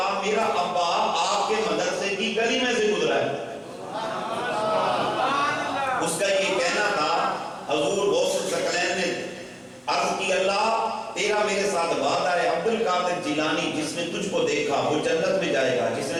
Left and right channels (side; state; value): both; identical; correlation 1.00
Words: میرا ابا آپ کے مدرسے کی گلی میں سے گزرا ہے۔ اس کا یہ کہنا تھا، حضور غوث الثقلین نے عرض کی اللہ تیرا میرے ساتھ وعدہ ہے، عبد القادر جیلانی جس نے تجھ کو دیکھا وہ جنت میں جائے گا، جس